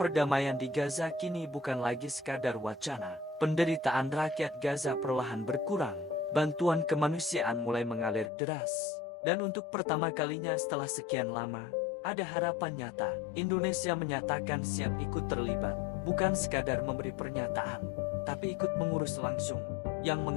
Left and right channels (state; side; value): drops out; right; at 8.3 s